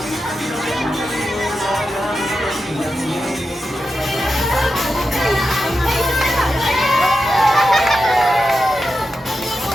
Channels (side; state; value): both; normal; correlation 0.90